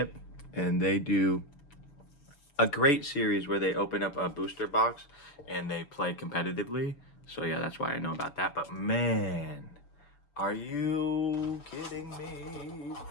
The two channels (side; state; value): right; late; 7.0 ms